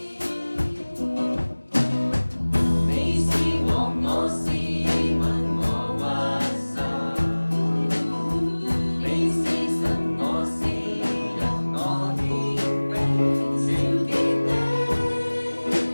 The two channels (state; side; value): inverted; both; correlation -1.00